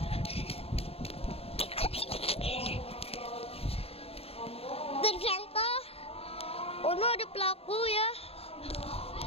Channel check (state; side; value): late; right; 0.29 ms